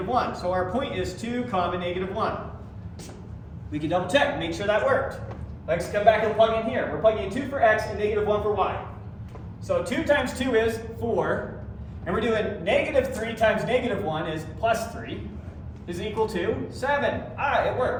1. So our point is 2 comma negative 1. We can double check, make sure that worked. Let's come back and plug in here. We're plugging in 2 for x and negative 1 for y. So 2 times 2 is 4. And we're doing -3 times -1 is +3 is equal to 7. Ah, it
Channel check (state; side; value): identical; both; correlation 1.00